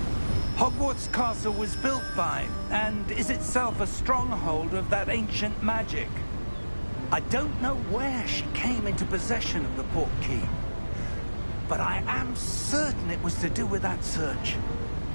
Hogwarts Castle was built by, and is itself a stronghold of that ancient magic. I don't know where she came into possession of the port key, but I am certain it was to do with that search.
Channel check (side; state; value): both; inverted; correlation -1.00